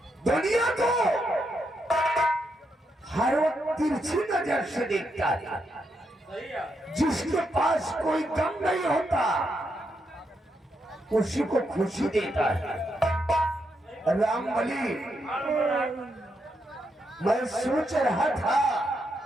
दुनिया को हर वक्त तिरछी नजर से देखता है। जिसके पास कोई गम नहीं होता उसी को खुशी देता है। रामबली, मैं सोच रहा था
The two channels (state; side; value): normal; both; correlation 0.81